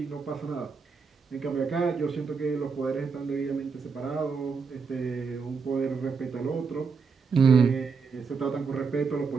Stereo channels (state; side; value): quieter; left; 5.2 dB